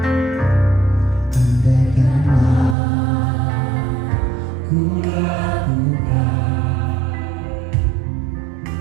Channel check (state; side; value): drops out; left; at 2.8 s